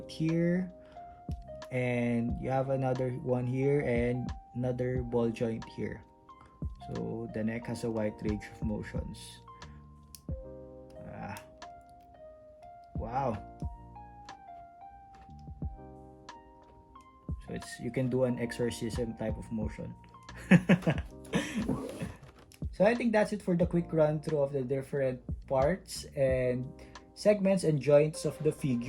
here, and you have another one here, and another ball joint here. So the neck has a wide range of motions. Wow. So you can do an exorcism type of motion. So I think that's it for the quick run through of the different parts and segments and joints of the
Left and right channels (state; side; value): identical; both; correlation 1.00